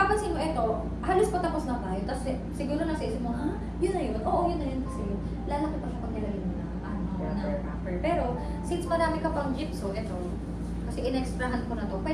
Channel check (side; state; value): both; identical; correlation 1.00